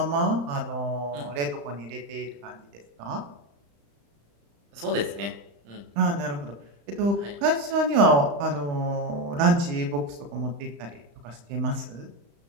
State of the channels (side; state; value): left; late; 35 ms